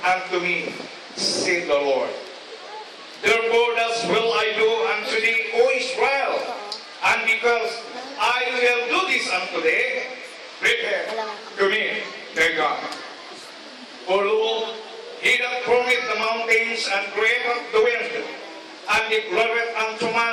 unto me, said the Lord. Therefore thus will I do unto thee, O Israel, and because I will do this unto thee, prepare to me, thy God. For lo, He that formeth the mountains and createth the wind, and declareth unto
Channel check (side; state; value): both; identical; correlation 1.00